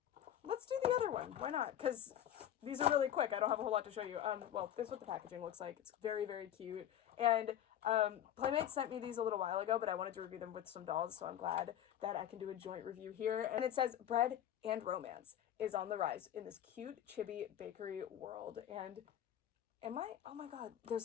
let's do the other one. Why not? Because these are really quick. I don't have a whole lot to show you. Well, this is what the packaging looks like. It's very, very cute. And Playmates sent me these a little while ago, but I wanted to review them with some dolls, so I'm glad that I can do a joint review here. And it says bread and romance is on the rise in this cute chibi bakery world. And oh my god,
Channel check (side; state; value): right; quieter; 10.9 dB